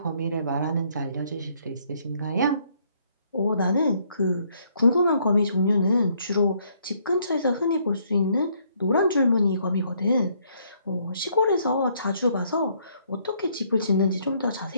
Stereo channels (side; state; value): both; inverted; correlation -0.68